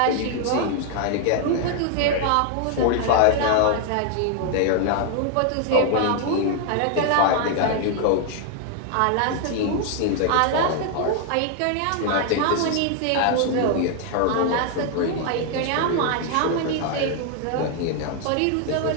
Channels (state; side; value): different; both; correlation 0.00